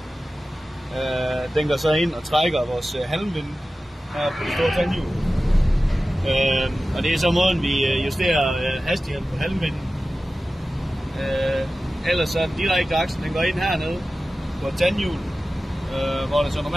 Den går så ind og trækker vores halmvinde her på det store tandhjul. Og det er så måden vi justerer hastigheden på halmvinden. Ellers så den direkte aksel, den går ind hernede på et tandhjul, hvor der så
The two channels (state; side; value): normal; both; correlation 0.95